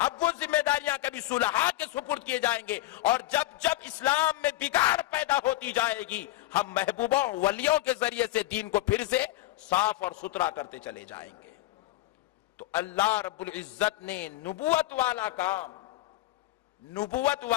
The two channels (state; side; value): quieter; right; 17.1 dB